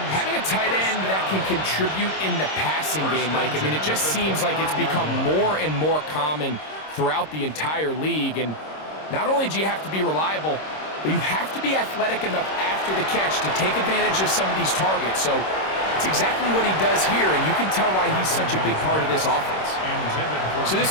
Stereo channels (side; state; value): right; late; 26 ms